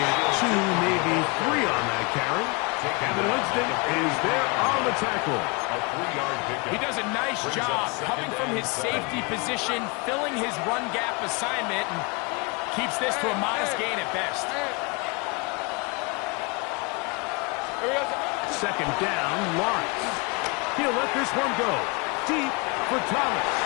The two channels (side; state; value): right; quieter; 30.0 dB